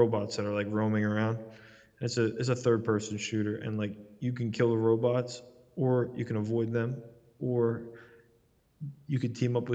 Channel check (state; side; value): identical; both; correlation 1.00